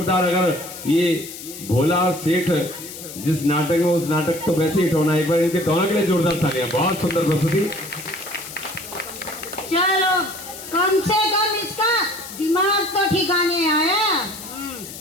अगर ये भोला और सेठ जिस नाटक में, उस नाटक तो वैसे हिट होना। एक बार इनके दोनों के लिए जोरदार तालियां। बहुत सुंदर प्रस्तुति। चलो, कम से कम इसका दिमाग तो ठिकाने आया।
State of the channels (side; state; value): left; noise; hiss, 12 dB below the sound